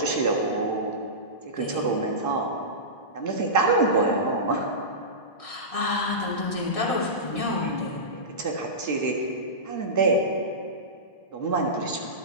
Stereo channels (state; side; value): late; right; 1.6 ms